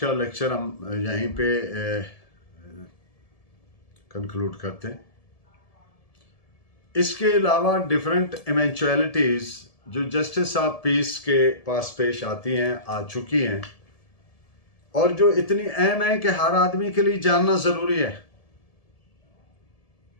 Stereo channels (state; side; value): late; right; 1.7 ms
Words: लेक्चर हम यहीं पे कंक्लूड करते हैं। इसके अलावा डिफरेंट इवेंचुअलिटीज़ जो जस्टिस ऑफ पीस के पास पेश आती हैं, आ चुकी हैं, और जो इतनी अहम है कि हर आदमी के लिए जानना ज़रूरी है,